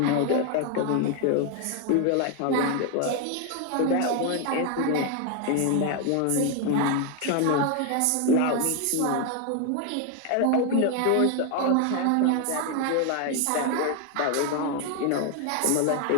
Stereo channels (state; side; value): different; both; correlation 0.01